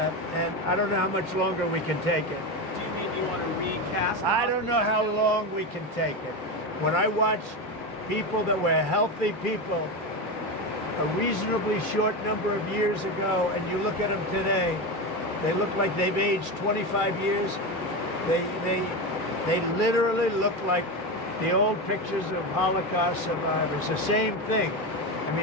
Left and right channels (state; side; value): normal; both; correlation 0.18